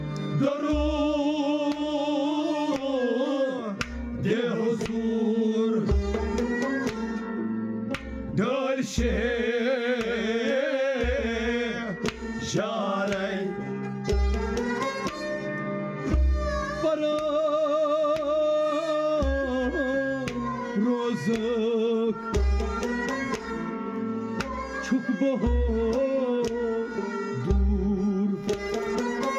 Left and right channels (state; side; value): identical; both; correlation 1.00